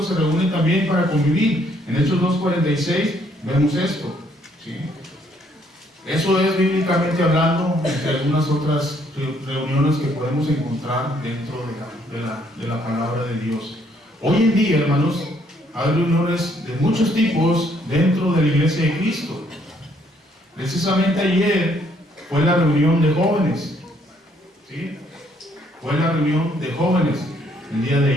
se reúne también para convivir. En Hechos 2:46 vemos esto. ¿Sí? Eso es bíblicamente hablando, entre algunas otras reuniones que podemos encontrar dentro de la palabra de Dios. Hoy en día, hermanos, hay reuniones de muchos tipos dentro de la iglesia de Cristo. Precisamente ayer fue la reunión de jóvenes. ¿Sí? Fue la reunión de jóvenes el día de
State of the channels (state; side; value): normal; both; correlation 0.68